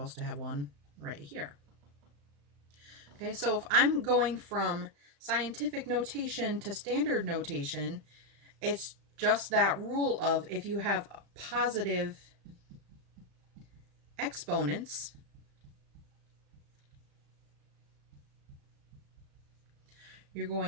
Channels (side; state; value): left; late; 35 ms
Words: to have one right here. Okay, so if I'm going from scientific notation to standard notation, it's just that rule of if you have positive exponents, you're